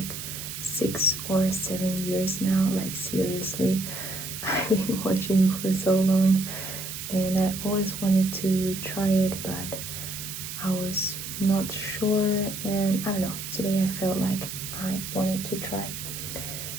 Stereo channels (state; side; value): noise; right; hiss, 8 dB below the sound